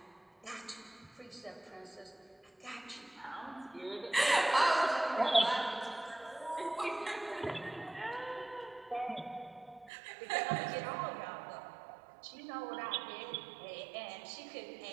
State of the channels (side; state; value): left; drops out; at 9.9 s